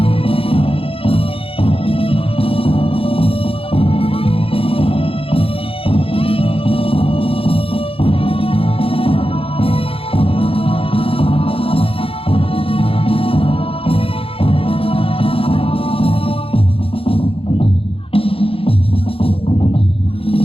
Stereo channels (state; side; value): late; right; 0.27 ms